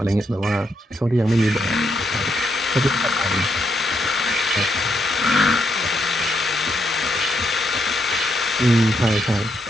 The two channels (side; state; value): both; normal; correlation 0.78